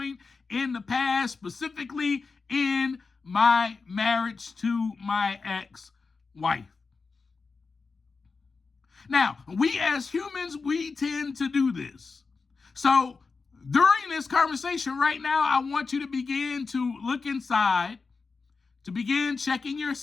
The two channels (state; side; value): quieter; right; 4.5 dB